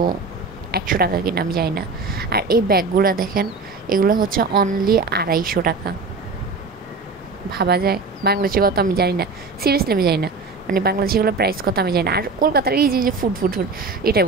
100 টাকা কিনা আমি জানি না। আর এই ব্যাগগুলো দেখেন, এগুলো হচ্ছে অনলি 250 টাকা। ভাবা যায় বাংলাদেশি কত আমি জানি না, সিরিয়াসলি আমি জানি না। মানে বাংলাদেশিগুলো প্রাইস কত আমি জানি না। আর কলকাতার এই যে ফুড ফুড ফুড এটাই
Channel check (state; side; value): quieter; left; 4.1 dB